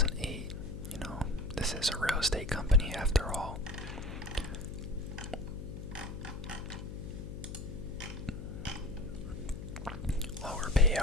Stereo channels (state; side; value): noise; left; hum, 8 dB below the sound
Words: This is a real estate company after all. Lower